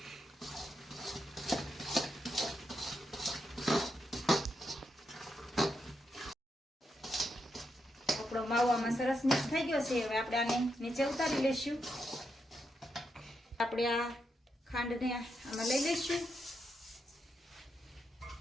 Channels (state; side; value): normal; both; correlation 0.83